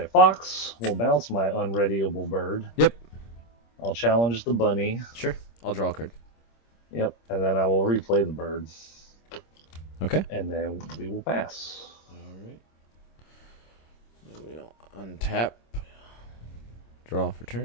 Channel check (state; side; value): late; right; 26 ms